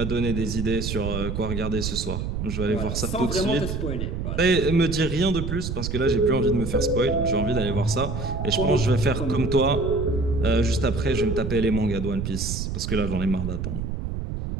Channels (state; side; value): noise; right; rumble, 4 dB below the sound